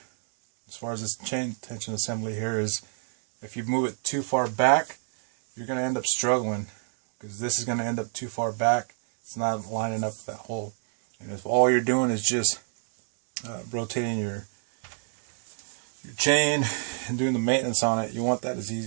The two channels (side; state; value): left; silent; 59 dB below the other